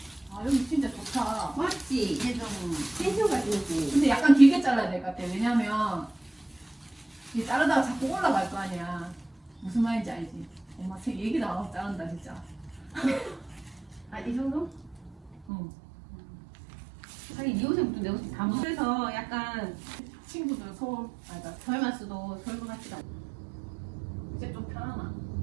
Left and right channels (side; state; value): left; drops out; at 15.5 s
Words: 아 여기 진짜 좋다. 맞지? 이게 좀 텐션가 있지. 근데 약간 길게 잘라야 될 것 같아. 왜냐면 이 자르다가 자꾸 올라갈 거 아니야. 무슨 말인지 알지? 엄마 책 얘기도 안 하고 자른다 진짜. 아, 이 정도? 응. 하긴 이 옷은 내 옷이 다 그래서 약간 친구들 서울 아니다. 덜마스도 덜고 같지가 않아. 이제 좀 편하나?